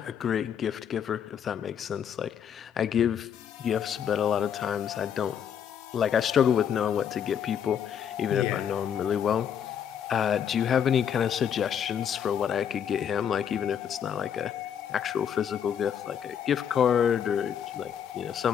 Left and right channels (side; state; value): right; quieter; 8.5 dB